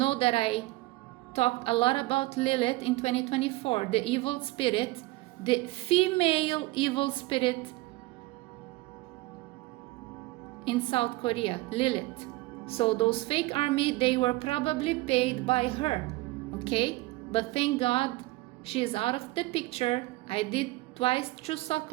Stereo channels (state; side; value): quieter; left; 20.5 dB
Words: that I talked a lot about Lilith in 2024, the evil spirit, the female evil spirit in South Korea, Lilith. So those fake army, they were probably paid by her, okay? But thank God she is out of the picture. I did twice Chuseok